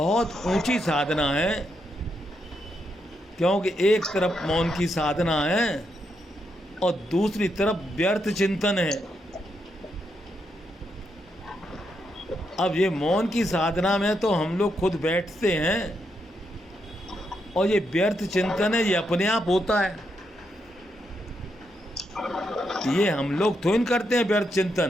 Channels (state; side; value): normal; both; correlation 0.81